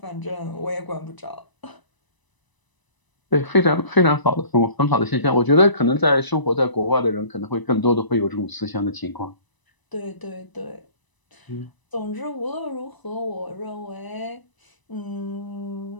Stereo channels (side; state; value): right; late; 1.0 ms